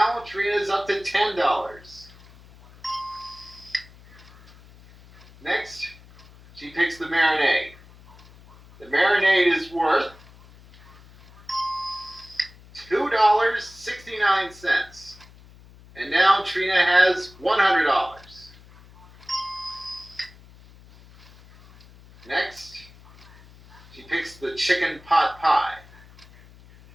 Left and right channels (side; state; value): left; noise; hum, 23 dB below the sound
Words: Trina's up to $10. Next, she picks the marinade. The marinade is worth $2.69. And now Trina has $100. Next, she picks the chicken pot pie.